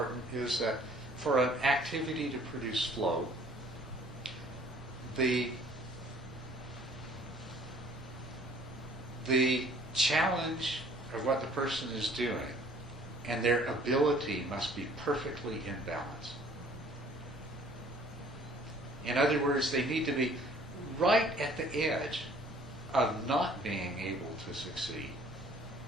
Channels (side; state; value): both; normal; correlation 0.55